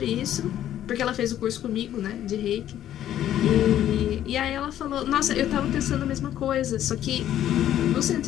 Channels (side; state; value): right; quieter; 11.7 dB